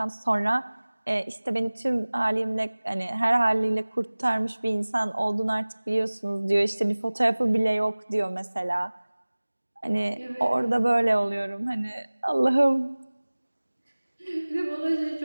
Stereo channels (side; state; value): both; inverted; correlation -1.00